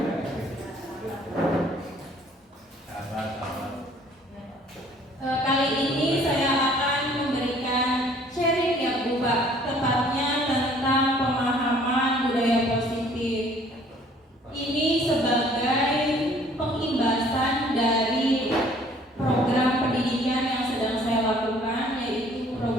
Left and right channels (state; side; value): normal; both; correlation 0.57